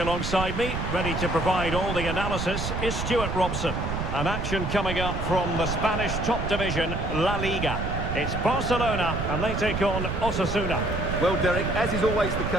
alongside me, ready to provide all the analysis, is Stuart Robson. An action coming up from the Spanish top division, La Liga. It's Barcelona, and they take on Osasuna. Well, Derek, as is always the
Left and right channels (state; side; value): noise; right; rumble, 3 dB below the sound